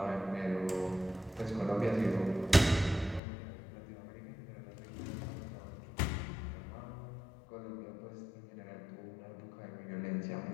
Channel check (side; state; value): right; drops out; at 3.2 s